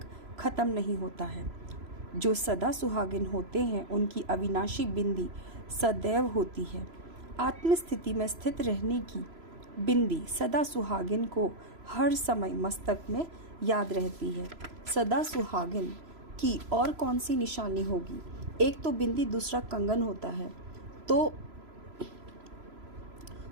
खत्म नहीं होता है। जो सदा सुहागिन होते हैं उनकी अविनाशी बिंदी सदैव होती है। आत्मस्थिति में स्थित रहने की बिंदी सदा सुहागिन को हर समय मस्तक में याद रहती है। सदा सुहागिन की और कौन सी निशानी होगी? एक तो बिंदी, दूसरा कंगन होता है, तो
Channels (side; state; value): left; late; 3.0 ms